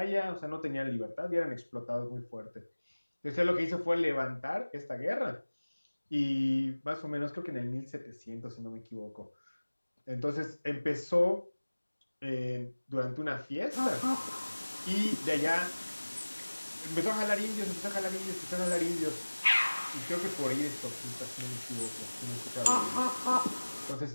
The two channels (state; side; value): inverted; both; correlation -1.00